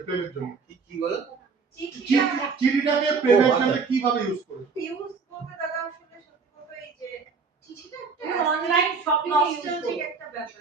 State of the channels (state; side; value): quieter; left; 5.0 dB